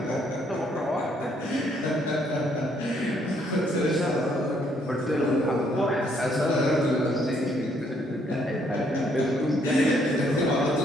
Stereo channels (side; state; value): both; normal; correlation 0.69